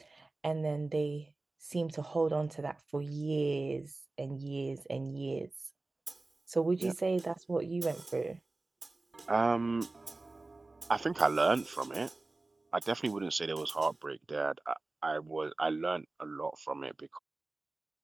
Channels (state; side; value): quieter; left; 3.2 dB